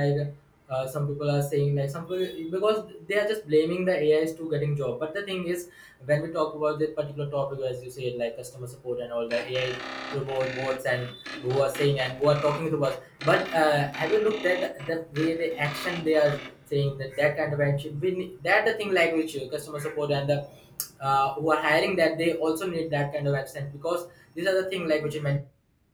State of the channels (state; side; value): identical; both; correlation 1.00